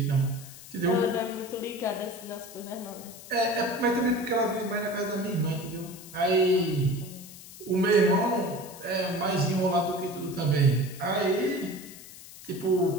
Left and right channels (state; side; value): noise; left; hiss, 16 dB below the sound